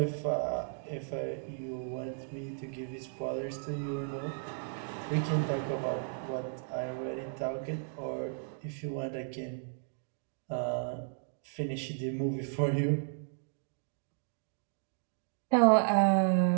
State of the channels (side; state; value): left; silent; digital silence